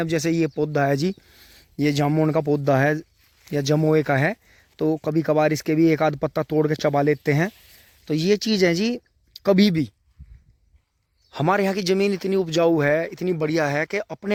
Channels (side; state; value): both; identical; correlation 1.00